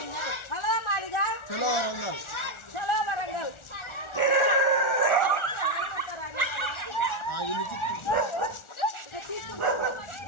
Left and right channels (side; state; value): right; late; 1.4 ms